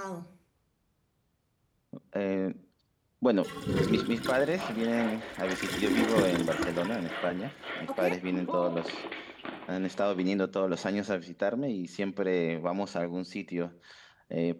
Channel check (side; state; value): both; identical; correlation 1.00